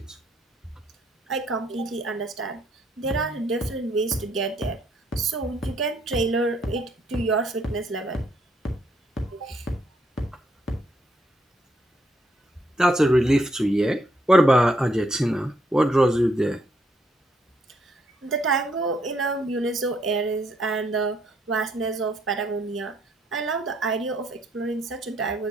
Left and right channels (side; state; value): both; normal; correlation 0.72